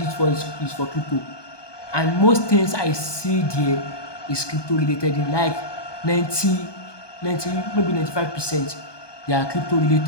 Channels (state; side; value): late; right; 1.2 ms